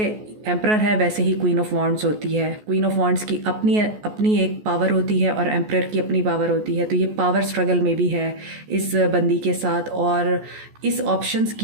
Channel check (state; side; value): late; left; 14 ms